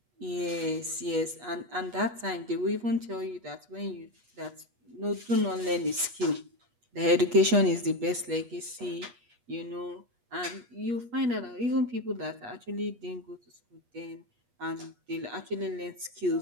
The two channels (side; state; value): left; late; 8.3 ms